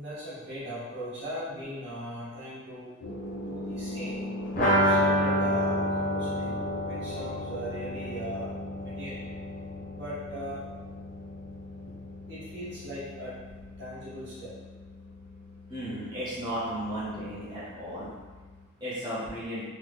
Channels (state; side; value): normal; both; correlation 0.20